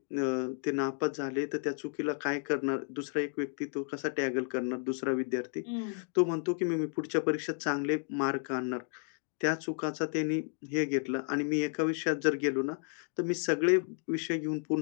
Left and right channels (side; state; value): right; silent; 56 dB below the other